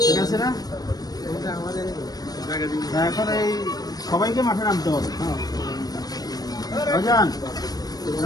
ঠিক আছে না? এখন এই সবাইকে মাঠে নামতে হবে। ভাইজান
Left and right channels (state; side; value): late; right; 0.19 ms